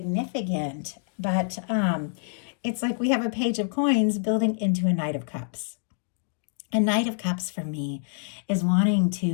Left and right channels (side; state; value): right; silent; digital silence